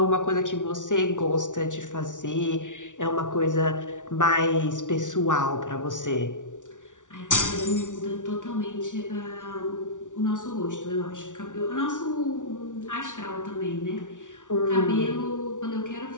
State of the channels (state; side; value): late; right; 0.87 ms